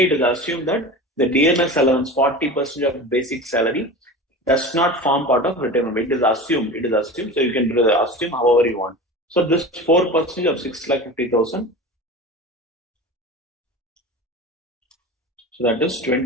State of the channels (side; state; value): both; normal; correlation 0.32